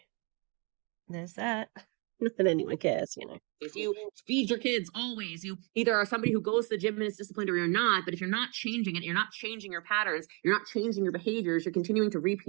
there's that. Not that anyone cares, you know. If you feed your kids always, you either are somebody who goes to the gym and is disciplined or you're not. But if you're not changing it, you're not changing your patterns, you're not changing your behaviors, you're continuing to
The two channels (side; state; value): left; quieter; 32.8 dB